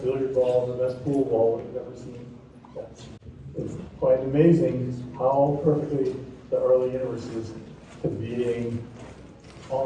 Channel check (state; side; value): identical; both; correlation 1.00